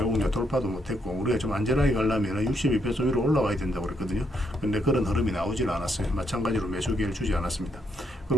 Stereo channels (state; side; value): normal; both; correlation 0.75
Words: 돌파도 못했고, 우리가 좀 안전하게 가려면 62평선 위로 올라와야 된다고 그랬거든요. 근데 그런 흐름이 나오질 않았어요. 마찬가지로 매수 기회를 주지 않았습니다.